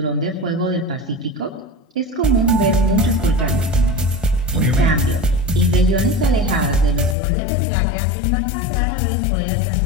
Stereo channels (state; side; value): drops out; right; at 7.2 s